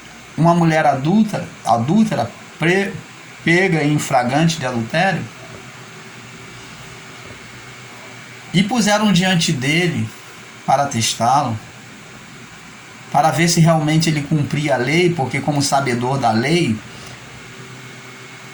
uma mulher adúltera, pega em flagrante de adultério, e puseram diante dele para testá-lo, para ver se realmente ele cumpria a lei, porque como sabedor da lei,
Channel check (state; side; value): identical; both; correlation 1.00